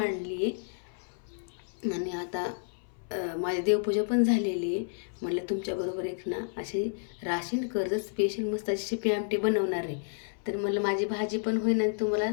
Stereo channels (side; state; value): right; silent; 57 dB below the other